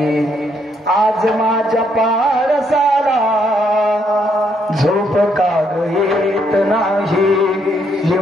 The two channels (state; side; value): normal; both; correlation 0.73